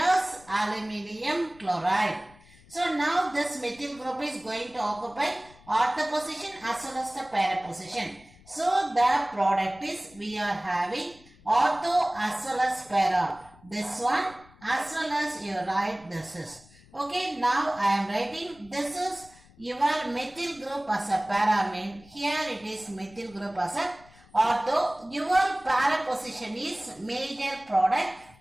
aluminium chloride. So now this methyl group is going to occupy ortho position as well as the para position. So the product is we are having ortho as well as para. This one as well as you write this is. Okay, now I am writing this is your methyl group as a para mean. Here it is methyl group as a ortho. Your para position is major product.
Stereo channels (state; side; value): noise; left; rumble, 25 dB below the sound